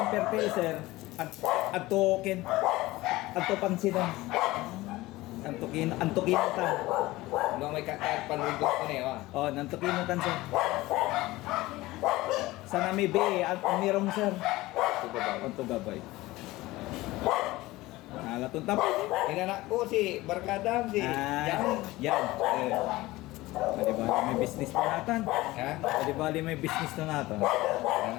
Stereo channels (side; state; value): right; quieter; 18.9 dB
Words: pertel, sir. At token. At to pansinan. Antukin ta. Nung may kakayat panwigos ko na yun. Oh, nantukin tan, sir. Sa nami be, at umirong, sir. Anto gabay. Nalatun tapos. Inanak ko si Barkadam, si Jan. Yan. Pwede ba may business na natin? Ha? Pwede ba may business na natin?